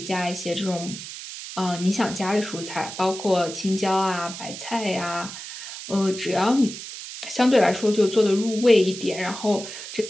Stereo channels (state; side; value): noise; right; hiss, 10 dB below the sound